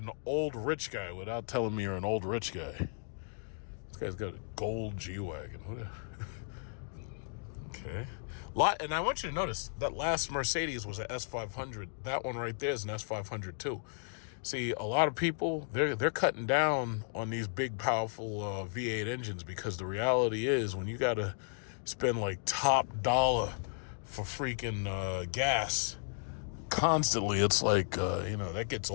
old rich guy without telling me you're an old rich guy. This guy's got a gold G-Wagon. Okay. And I want you to notice that last Mercedes was an S500. That one right there is an S500 too. See, a lot of people, they're cutting down on these big, powerful V8 engines, because the reality is when you got to spend like top dollar for freaking gas constantly, it's like, that gets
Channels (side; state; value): right; silent; digital silence